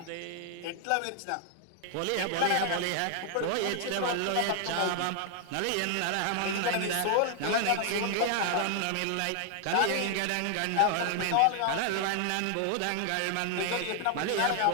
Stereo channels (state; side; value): different; both; correlation 0.00